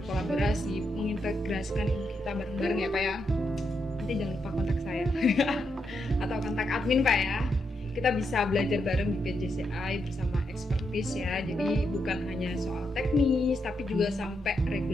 mengintegrasikan ilmu kita bareng-bareng ya Pak ya. Nanti jangan lupa kontak saya atau kontak admin Pak ya. Kita bisa belajar bareng di PJCI bersama expertise ya. Jadi bukan hanya soal teknis, tapi juga sampai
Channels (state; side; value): normal; both; correlation 0.82